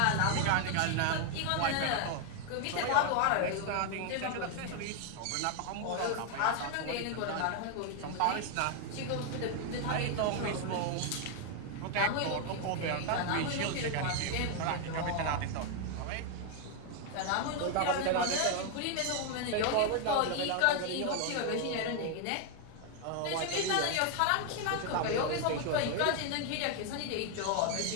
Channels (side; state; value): both; different; correlation 0.00